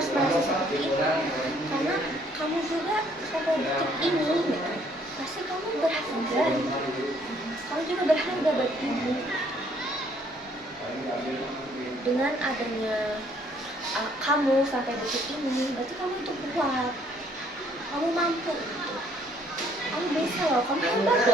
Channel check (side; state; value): both; normal; correlation 0.64